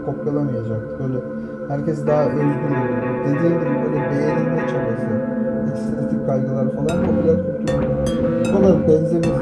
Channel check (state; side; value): identical; both; correlation 1.00